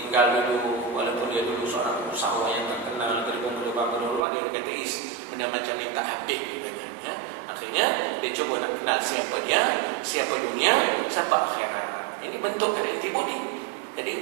dulu, walaupun dia dulu seorang usahawan yang terkenal, berubah, dia kata benda macam ni tak habis, ya. Akhirnya dia cuba nak kenal siapa dia, siapa dunia, siapa akhirat. Ini bentuk dari antibody.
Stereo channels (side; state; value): left; drops out; at 4.2 s